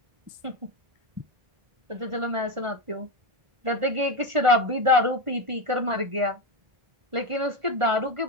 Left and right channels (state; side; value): late; left; 1.5 ms